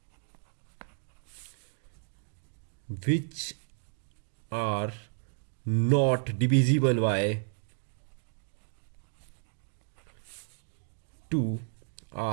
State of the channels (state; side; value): silent; left; 56 dB below the other